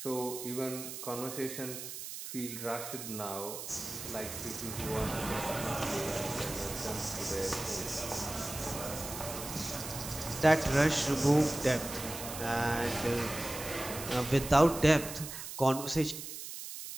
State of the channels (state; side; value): noise; right; hiss, 9 dB below the sound